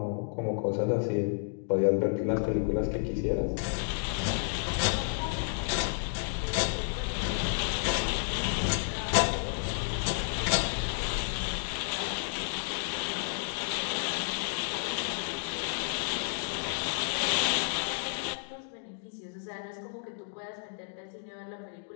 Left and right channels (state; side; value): silent; right; digital silence